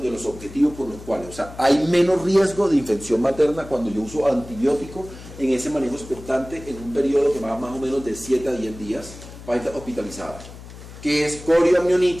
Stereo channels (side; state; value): left; noise; hum, 16 dB below the sound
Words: los objetivos por los cuales, o sea, hay menos riesgo de infección materna cuando yo uso antibiótico en ese manejo expectante en un periodo que va más o menos de 7 a 10 días para estar hospitalizada, que es